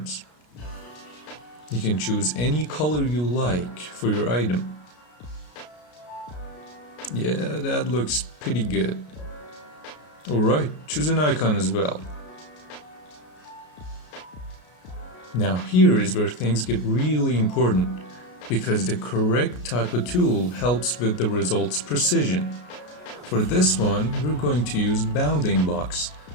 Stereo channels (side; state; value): right; late; 33 ms